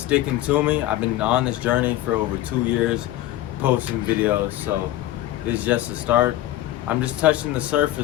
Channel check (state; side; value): quieter; right; 14.5 dB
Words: to me. I've been on this journey for over 2 years, posting videos, so this is just the start. I'm just touching the